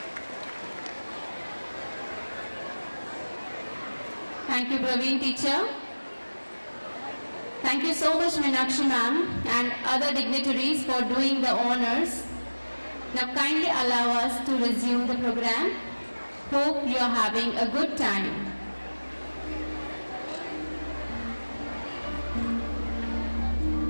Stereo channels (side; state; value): both; inverted; correlation -1.00